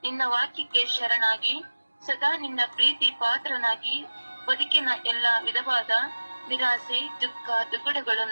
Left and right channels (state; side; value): inverted; both; correlation -1.00